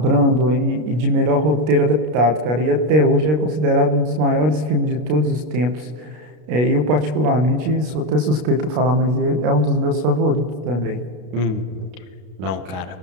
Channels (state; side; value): late; left; 33 ms